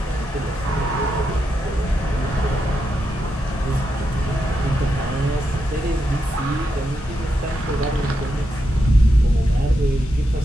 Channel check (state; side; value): normal; both; correlation 0.85